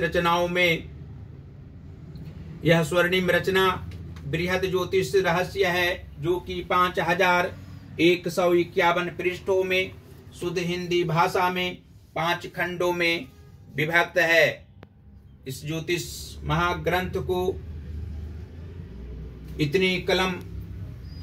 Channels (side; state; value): both; identical; correlation 1.00